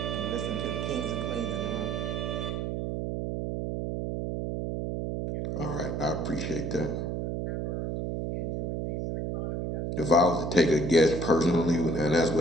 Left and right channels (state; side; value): noise; right; hum, 2 dB below the sound